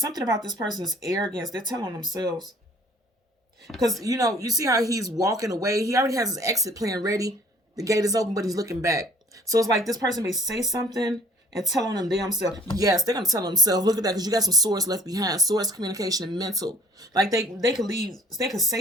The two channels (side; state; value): both; normal; correlation 0.56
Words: about this person's arrogance. They're telling themselves. Because, you see how he's walking away. He already has his exit plan ready. The gate is open, but he's looking back. So it's like this person may say something and tell on them damn self. Yes, they're going to tell themselves. Look at that, because you got some swords left behind. Swords, communication, and mental. Like they could leave. They could